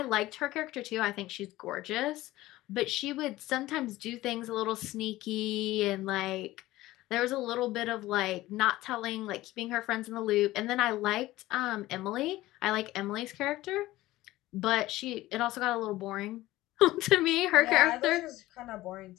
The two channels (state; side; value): quieter; right; 17.1 dB